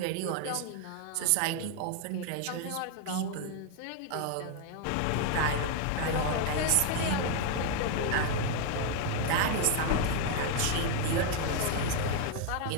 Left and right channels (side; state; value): both; different; correlation 0.01